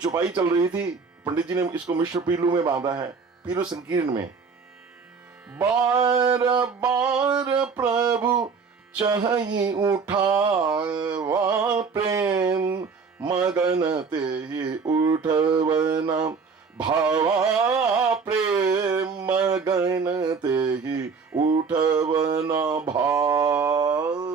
चल रही थी, पंडित जी ने इसको मिश्र पीलू में बांधा है, पीलू संकीर्ण में। बार बार प्रभु चाहि उठावा प्रेम, मगन ते ही उठवना भावा प्रेम, मगन ते ही उठवना भावा।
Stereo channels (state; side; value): quieter; left; 5.2 dB